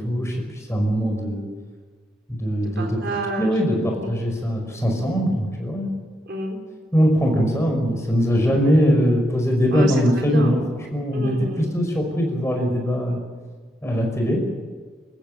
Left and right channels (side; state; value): both; normal; correlation 0.82